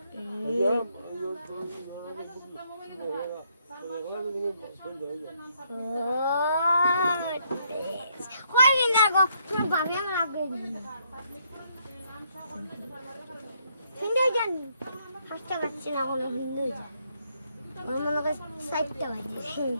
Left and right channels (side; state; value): both; inverted; correlation -0.72